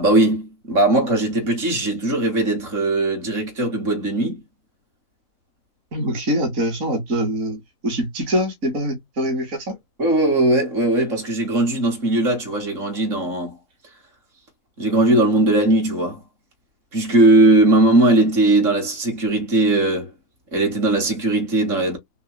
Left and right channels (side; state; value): left; late; 3.6 ms